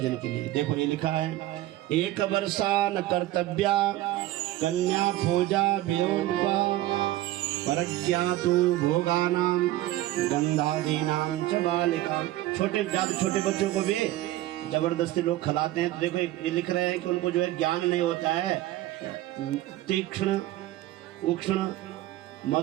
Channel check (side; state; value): left; quieter; 15.7 dB